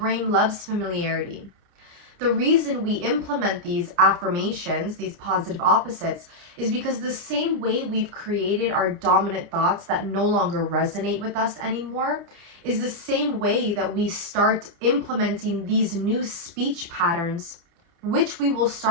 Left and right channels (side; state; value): left; late; 30 ms